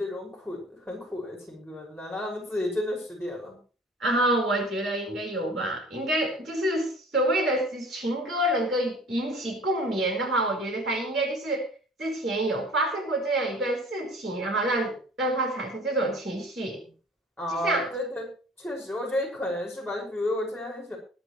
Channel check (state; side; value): normal; both; correlation 0.47